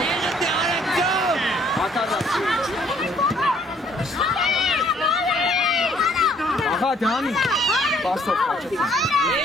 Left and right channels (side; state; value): both; normal; correlation 0.62